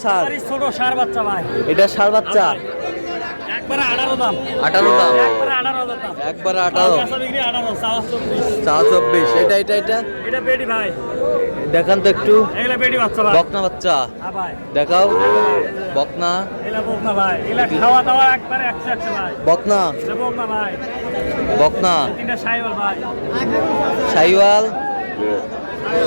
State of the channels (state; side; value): inverted; both; correlation -1.00